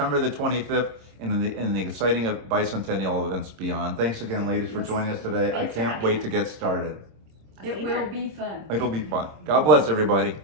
the 25th in the exciting bicentennial events beyond. Thanks again, ladies, for joining us today. Thanks I for can't having wait us. to get started. It will be fun. It'll be fun. God bless everybody.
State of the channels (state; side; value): late; left; 26 ms